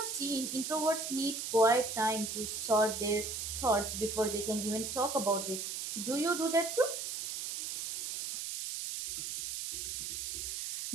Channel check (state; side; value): noise; right; hiss, 4 dB below the sound